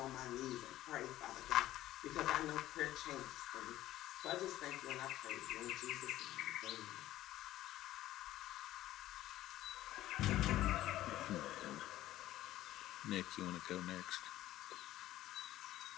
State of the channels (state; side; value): quieter; right; 14.5 dB